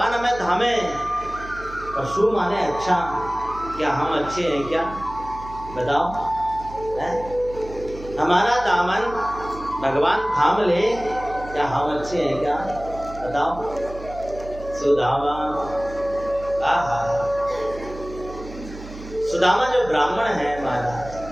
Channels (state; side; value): noise; right; hum, 14 dB below the sound